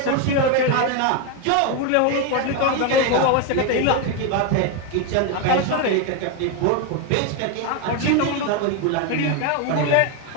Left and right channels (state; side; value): different; both; correlation 0.01